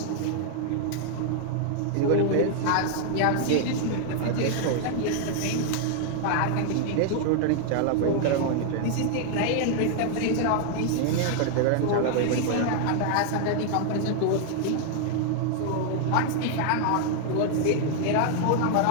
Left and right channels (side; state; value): both; different; correlation 0.00